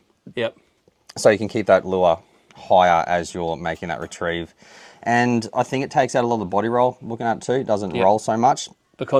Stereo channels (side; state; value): both; identical; correlation 1.00